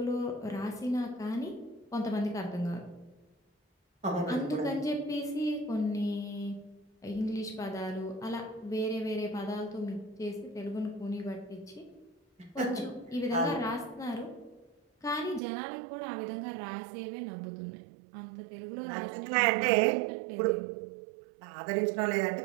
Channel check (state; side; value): drops out; left; at 15.4 s